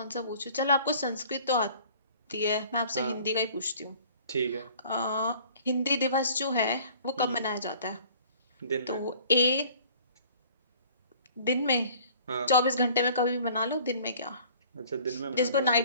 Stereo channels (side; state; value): both; inverted; correlation -0.51